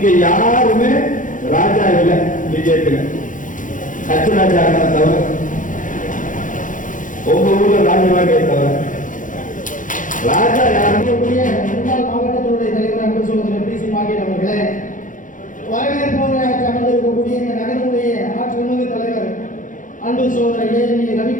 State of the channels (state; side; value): late; right; 0.38 ms